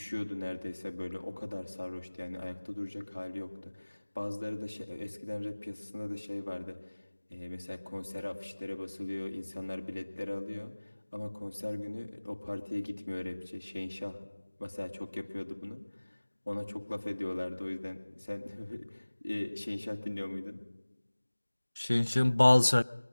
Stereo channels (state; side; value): inverted; both; correlation -1.00